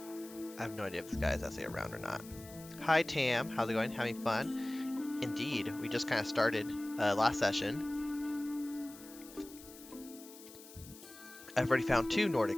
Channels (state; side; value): noise; left; hiss, 18 dB below the sound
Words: I have no idea if this guy is actually around or not. Hi Tam, how's it going? Having fun? Indeed, we just kind of started last session. I've already found 2